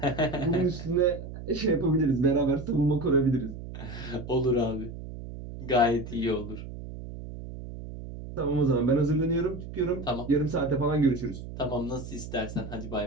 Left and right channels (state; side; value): noise; right; hum, 11 dB below the sound